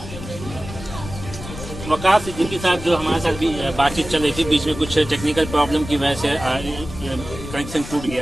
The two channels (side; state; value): left; noise; rumble, 11 dB below the sound